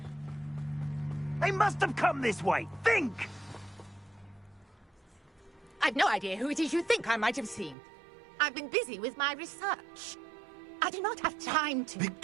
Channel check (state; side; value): drops out; left; at 7.8 s